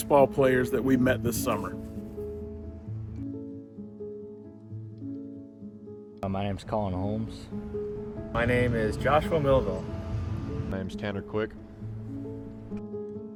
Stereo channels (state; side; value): identical; both; correlation 1.00